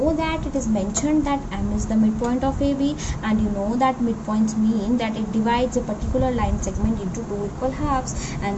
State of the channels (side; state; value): both; identical; correlation 1.00